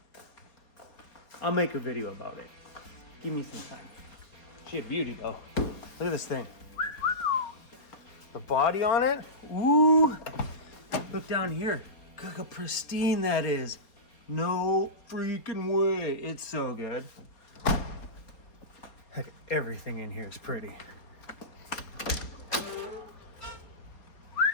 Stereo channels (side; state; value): right; late; 4.3 ms